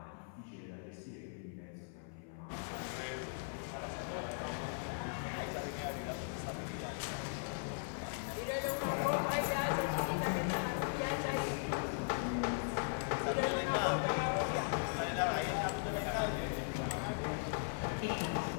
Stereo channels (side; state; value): right; silent; 52 dB below the other